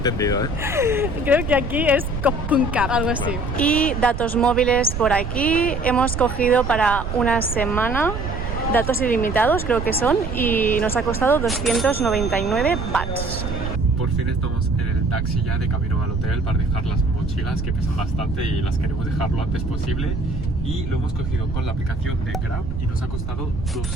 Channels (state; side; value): noise; right; rumble, 5 dB below the sound